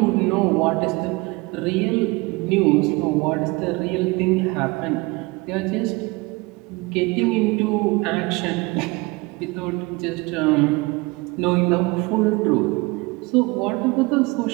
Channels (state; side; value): quieter; left; 24.9 dB